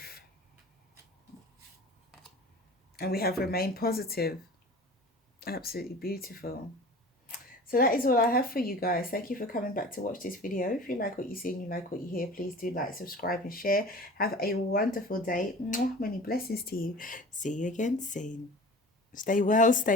And we have remain positive. Absolutely beautiful. So that is all I have for you guys. Thank you for coming back to watch this video. If you like what you see and you like what you hear, please do like, subscribe and share. Have a wonderful day. Mwah, many blessings to you. See you again soon. Stay well,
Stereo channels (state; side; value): normal; both; correlation 0.40